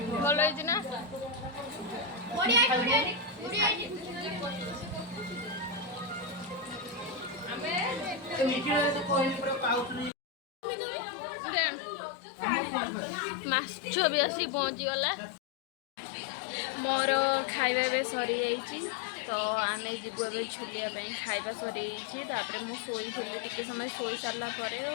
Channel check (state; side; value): drops out; right; at 10.1 s